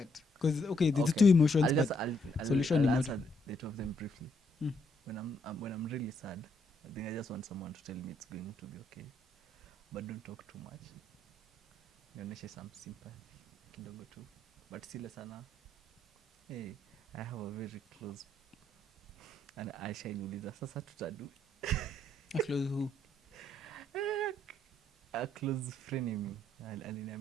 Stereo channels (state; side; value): normal; both; correlation 0.73